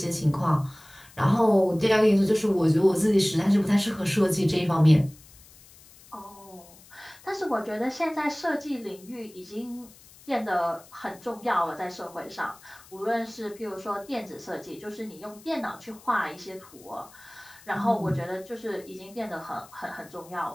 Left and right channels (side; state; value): left; noise; hiss, 23 dB below the sound